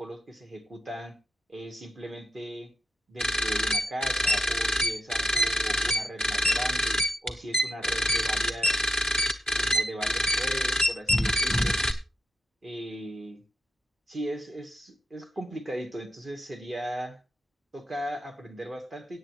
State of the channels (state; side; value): normal; both; correlation 0.80